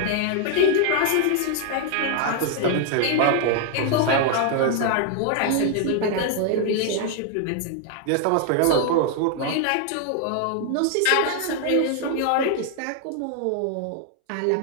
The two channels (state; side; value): different; both; correlation 0.00